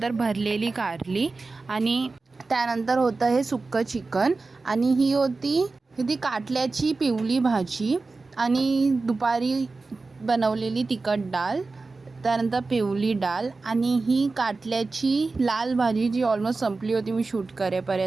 भरलेली कारली आणि त्यानंतर होतं हे सुक्कं चिकन आणि ही होती काटल्याची पिवली भाजी आणि दुपारी बनवलेली तिखट डाळ, त्यानंतर पिवली डाळ आणि ही काटल्याची लाल भाजी जी ऑलमोस्ट संपली होती मी शूट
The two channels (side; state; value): left; quieter; 3.8 dB